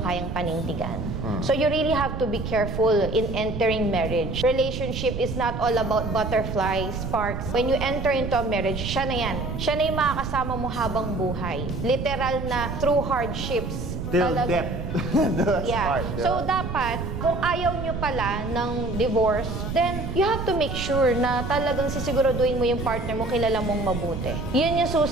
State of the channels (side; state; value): right; noise; rumble, 5 dB below the sound